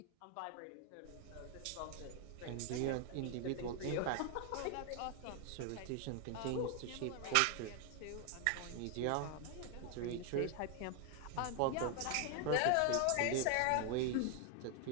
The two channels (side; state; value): both; different; correlation 0.00